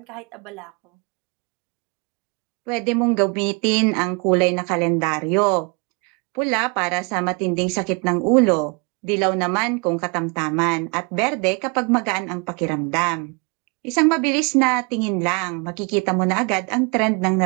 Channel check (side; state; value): left; quieter; 32.3 dB